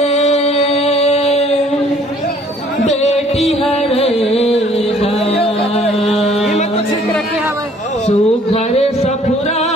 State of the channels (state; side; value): normal; both; correlation 0.58